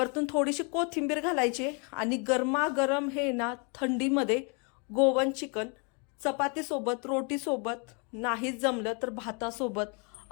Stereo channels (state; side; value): quieter; right; 35.4 dB